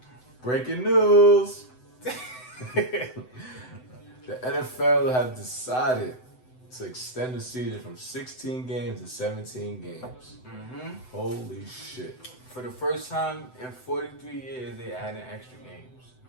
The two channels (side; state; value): right; late; 7.9 ms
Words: Breaking news. The NFL have decided to extend the season from 16 games to 17 games. Mm-hmm. Holy shit. For the first time in 43 years, they added extra games.